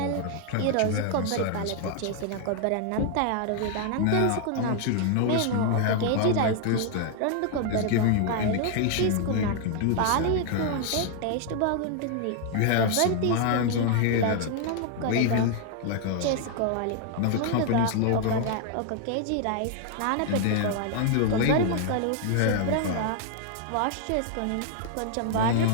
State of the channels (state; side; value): different; both; correlation 0.00